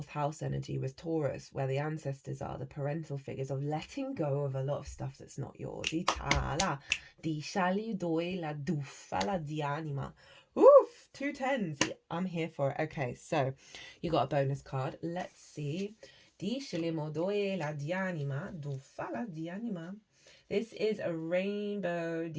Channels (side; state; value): both; identical; correlation 1.00